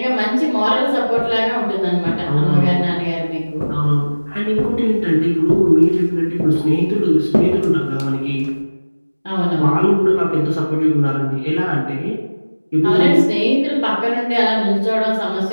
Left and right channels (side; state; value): both; inverted; correlation -1.00